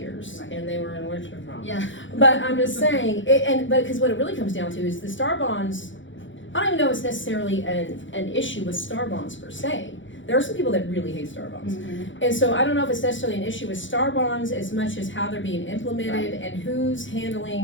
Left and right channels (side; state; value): right; late; 0.55 ms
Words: and they were in worse problems. Yeah. But I'm just saying, but because what it really comes down to is the star bonds. I don't even know it's necessarily an issue with star bonds per se. There are some people that really hate star bonds. And so I don't know if it's necessarily an issue with star bonds as much as how they're being implemented and who's